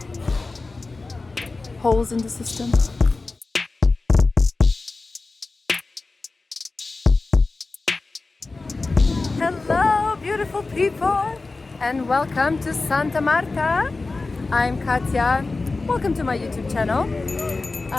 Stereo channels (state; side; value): quieter; right; 3.6 dB